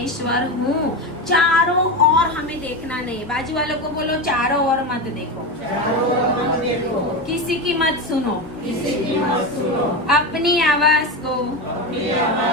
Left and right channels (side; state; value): both; normal; correlation 0.18